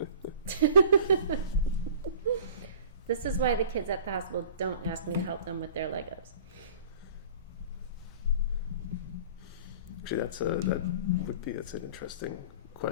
This is why the kids at the hospital don't ask me to help them with their Legos. Actually, that's an interesting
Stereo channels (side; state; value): both; inverted; correlation -0.45